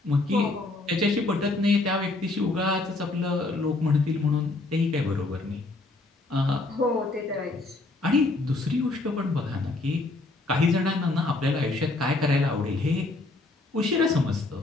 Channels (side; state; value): right; quieter; 3.1 dB